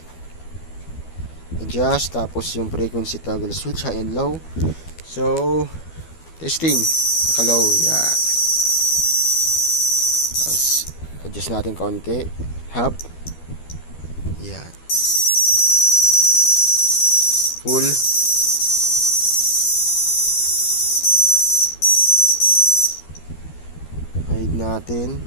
adjust, tapos yung frequency toggle switch high and low. So testing, naka-low yan. Tapos adjust natin konti, half yan, full, hide natin,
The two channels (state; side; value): late; right; 12 ms